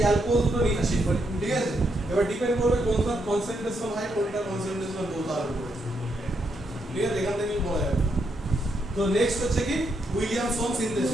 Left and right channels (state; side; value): normal; both; correlation 0.79